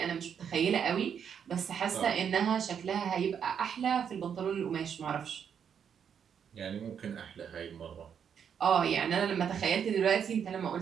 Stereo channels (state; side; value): quieter; left; 7.8 dB